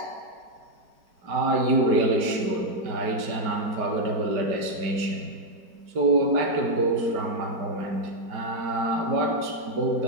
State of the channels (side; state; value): left; late; 5.0 ms